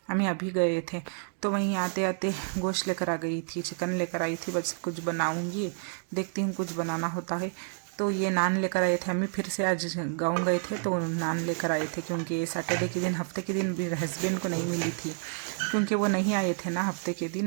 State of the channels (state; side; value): silent; left; 58 dB below the other